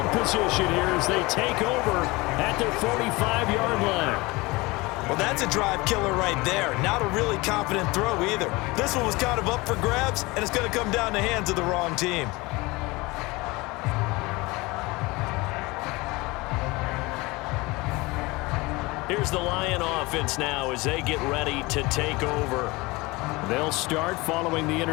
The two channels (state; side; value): quieter; right; 23.0 dB